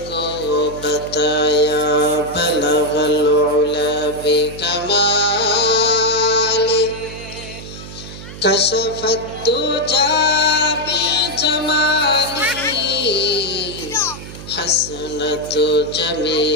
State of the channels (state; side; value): noise; right; hum, 13 dB below the sound